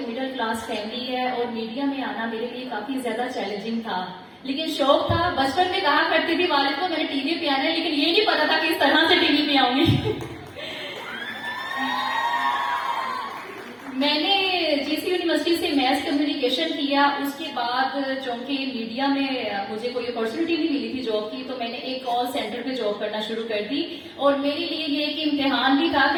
क्लास फैमिली है और मीडिया में आना मेरे लिए काफी ज्यादा चैलेंजिंग था, लेकिन शौक था। बचपन में कहा करती थी वालिद को मैंने टीवी पे आना है, लेकिन ये नहीं पता था कि इस तरह से टीवी पे आऊंगी। मैंने जीसी यूनिवर्सिटी से मैथ कम्युनिकेशन किया। उसके बाद चूंकि मीडिया में मुझे कोई अपॉर्चुनिटी नहीं मिली थी जॉब की, तो मैंने एक कॉल सेंटर पे जॉब करना शुरू कर दी। और मेरे लिए ये एक इम्तिहान भी था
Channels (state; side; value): identical; both; correlation 1.00